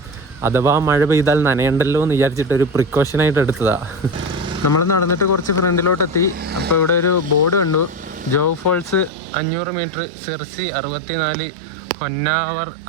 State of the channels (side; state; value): left; drops out; at 9.1 s